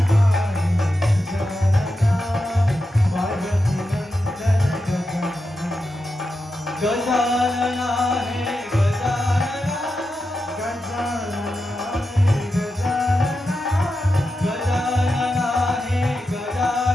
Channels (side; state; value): both; normal; correlation 0.89